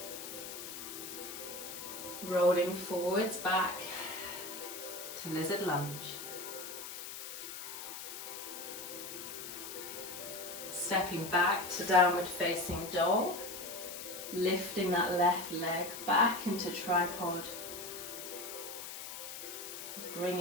Rolling forwards back to lizard lunge. Stepping back to downward facing dog. Lifting that left leg back into tripod.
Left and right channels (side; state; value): left; noise; hiss, 9 dB below the sound